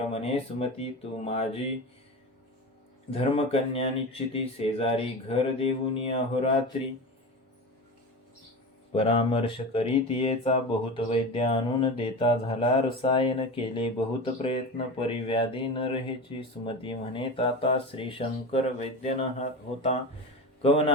म्हणे सुमती तू माझी धर्मकन्या निश्चिती शेजारी घर देऊनी अहोरात्री परामर्श करीत येचा बहुत वैद्य आणून देता झाला रसायन केले बहुत प्रयत्न परिव्याधी न रहेची सुमती म्हणे ताता श्री शंकर वैद्य न होता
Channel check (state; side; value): normal; both; correlation 0.26